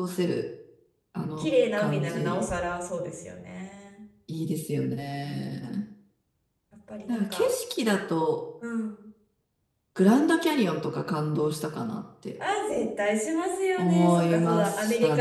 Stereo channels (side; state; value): both; identical; correlation 1.00